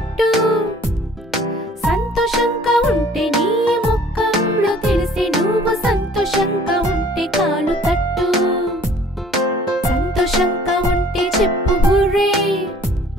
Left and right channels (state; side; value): normal; both; correlation 0.53